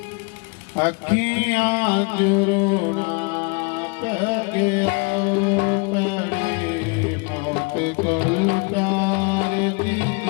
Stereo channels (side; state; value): right; quieter; 33.0 dB